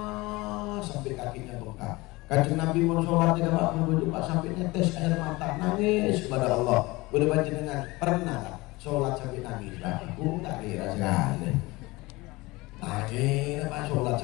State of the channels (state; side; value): quieter; right; 22.0 dB